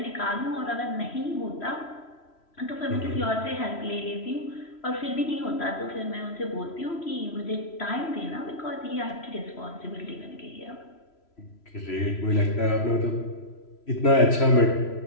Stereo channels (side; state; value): right; late; 3.0 ms